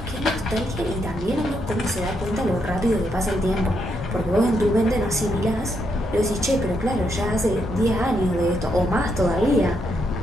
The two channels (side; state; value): both; normal; correlation 0.78